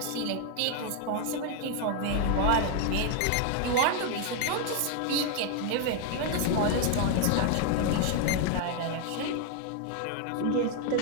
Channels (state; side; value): different; both; correlation 0.00